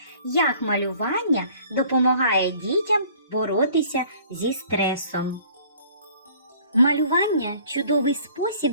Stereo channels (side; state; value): both; inverted; correlation -0.54